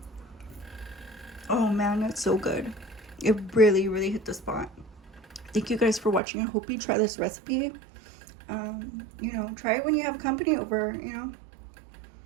Oh man, that's so good. It really, really hit the spot. Thank you guys for watching. I hope you try this recipe. You know, try it when you have company over, you know.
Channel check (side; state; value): left; drops out; at 6.2 s